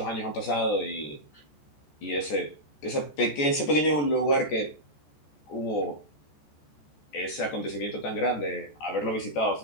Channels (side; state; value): right; late; 14 ms